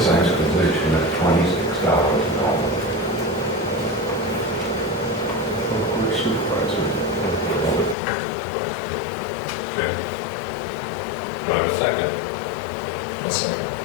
full-size position at $26 an hour. Public supervisor. Okay. Do I have a second? I'll second.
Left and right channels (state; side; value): drops out; right; at 8.0 s